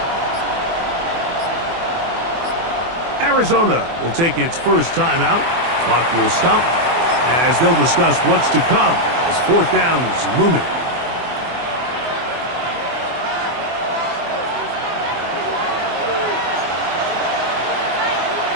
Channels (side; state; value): left; late; 24 ms